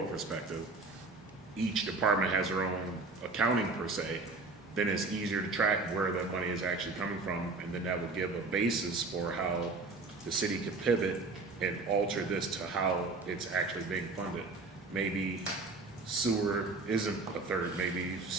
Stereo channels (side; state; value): left; quieter; 3.6 dB